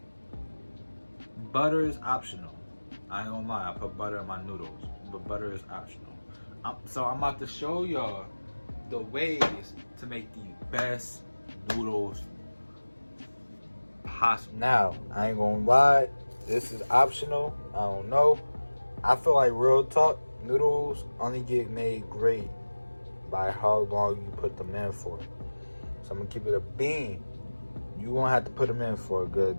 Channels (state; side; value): inverted; both; correlation -1.00